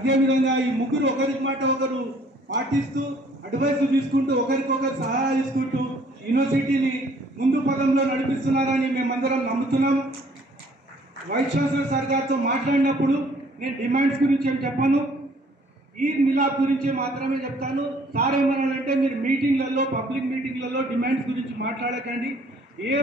ఈ ముగ్గురు ఒకరి మాట ఒకరు పాటిస్తూ, అడ్వైస్ తీసుకుంటూ, ఒకరికొకరు సహాయం తీసుకుంటూ యూనివర్సిటీని ముందు పదంలో నడిపిస్తున్నారని మేమందరం నమ్ముతున్నాం. వైస్ ఛాన్సలర్ సార్ గారితో మాట్లాడినప్పుడు నేను డిమాండ్స్ గురించి ఏం చెప్పాను, ఈద్ మిలాద్ గురించి మాత్రమే చెప్తాను. సార్ ఏమన్నాడంటే మీరు మీటింగ్లలో, పబ్లిక్ మీటింగ్లలో డిమాండ్స్ గురించి మాట్లాడకండి,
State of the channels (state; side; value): normal; both; correlation 0.59